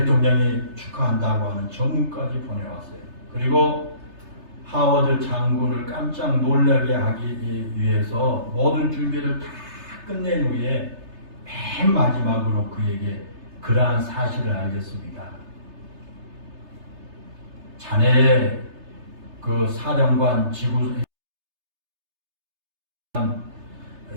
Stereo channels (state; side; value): late; left; 3.3 ms